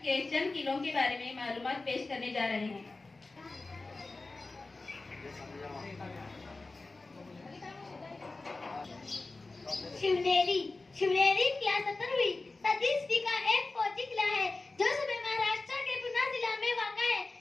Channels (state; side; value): quieter; right; 3.4 dB